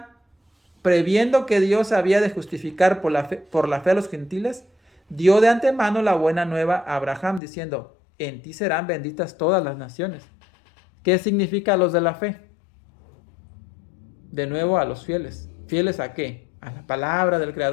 previendo que Dios había de justificar por la fe a los gentiles, dio de antemano la buena nueva a Abraham, diciendo, en ti serán benditas todas las naciones. ¿Qué significa los de la fe? De nuevo a los fieles. ¿Fieles a qué? A la palabra del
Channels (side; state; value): right; drops out; at 7.4 s